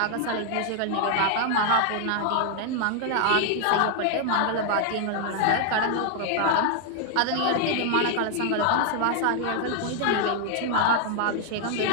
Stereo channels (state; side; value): different; both; correlation 0.00